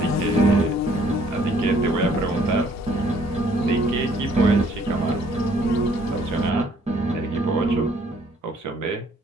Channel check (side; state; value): both; normal; correlation 0.62